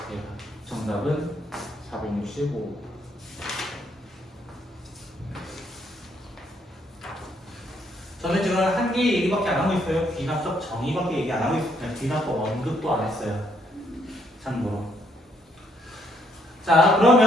정답은 465. 저는 지금 한 개 얘기밖에 안 하고 있어요. 귀납법 정의밖에 얘기 안 하고 있어요. 그냥 귀납법 언급도 안 했어요. 참고로. 자,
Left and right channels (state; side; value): normal; both; correlation 0.71